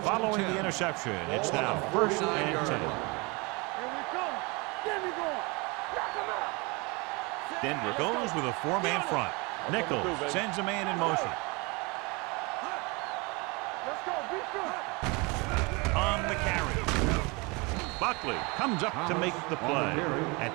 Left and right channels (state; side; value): quieter; left; 27.8 dB